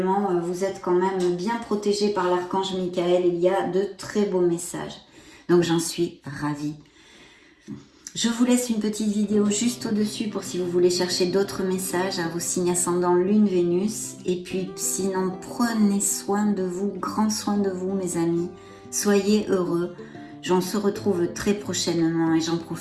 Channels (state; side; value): identical; both; correlation 1.00